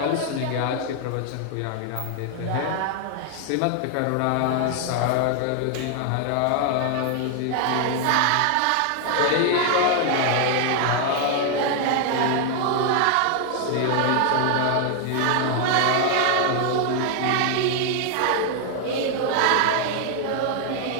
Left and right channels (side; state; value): both; different; correlation 0.00